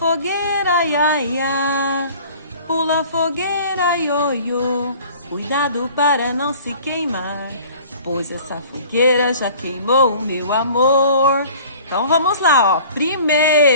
ia, ia. Pula fogueira, ioiô. Cuidado para não se queimar, pois essa fogueira já queimou o meu amor. Então vamos lá, ó.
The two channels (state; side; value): inverted; both; correlation -0.47